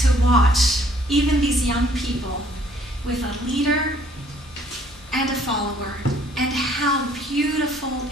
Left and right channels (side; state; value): both; normal; correlation 0.61